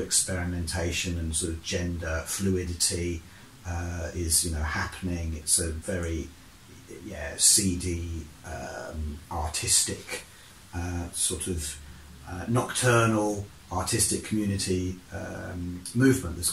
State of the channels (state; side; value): identical; both; correlation 1.00